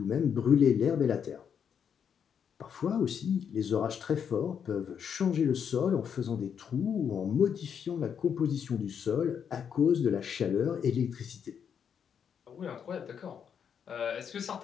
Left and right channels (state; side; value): quieter; right; 7.7 dB